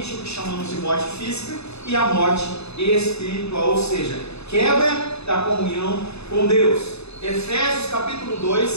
o que chamamos de morte física e a morte espiritual, ou seja, quebra da comunhão com Deus. Efésios capítulo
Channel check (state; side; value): late; right; 0.80 ms